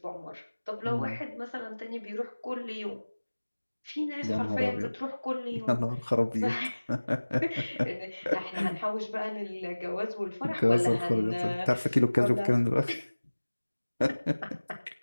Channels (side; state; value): both; inverted; correlation -1.00